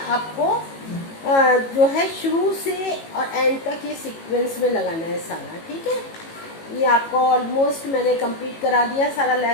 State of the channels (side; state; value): right; late; 18 ms